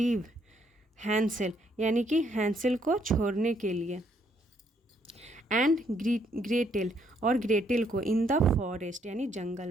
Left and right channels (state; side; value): normal; both; correlation 0.70